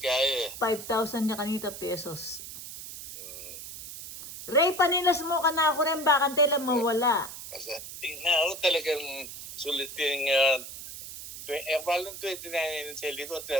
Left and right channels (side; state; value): right; noise; hiss, 11 dB below the sound